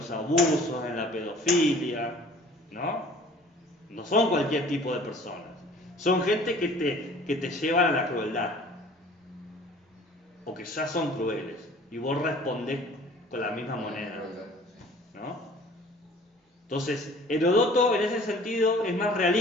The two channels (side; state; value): both; normal; correlation 0.49